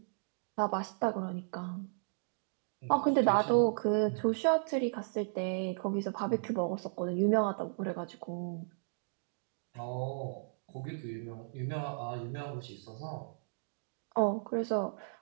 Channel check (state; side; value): silent; left; digital silence